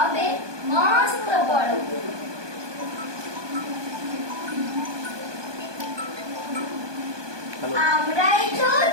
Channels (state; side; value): late; left; 1.2 ms